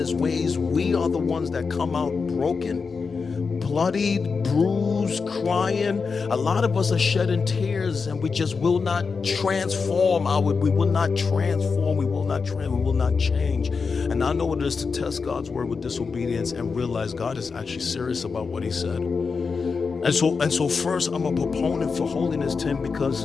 his ways, we are the ones that come out broken, bloodied, bruised, crying. A lot of us are shedding tears, and we just will not transform. We will not transform. We will not change. And I know what it is to test God's word with disobedience and realize God is actually serious about what he said. And so first, I'm a proponent for holiness, Tim, because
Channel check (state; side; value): quieter; right; 5.0 dB